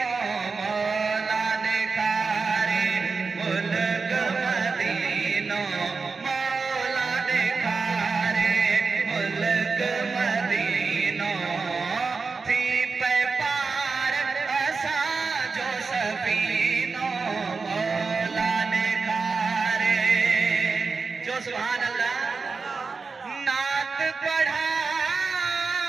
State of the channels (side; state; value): left; quieter; 4.5 dB